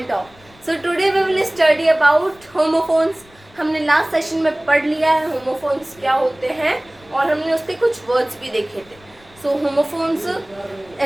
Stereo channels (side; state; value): left; noise; rumble, 27 dB below the sound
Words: So today we will study about homophones. हमने last session में पढ़ लिया है homophones क्या होते हैं और हमने उसके कुछ वर्ड्स भी देखे थे. सो होमोफोन्स